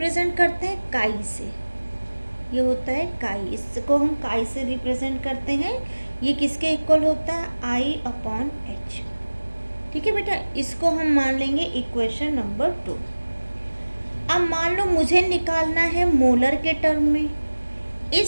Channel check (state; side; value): inverted; both; correlation -1.00